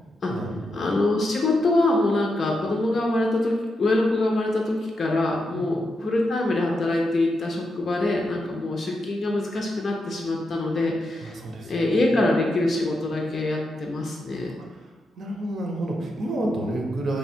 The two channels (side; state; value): both; normal; correlation 0.85